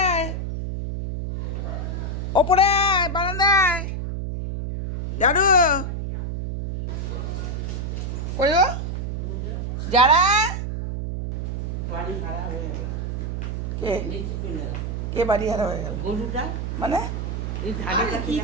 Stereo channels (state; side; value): noise; right; hum, 3 dB below the sound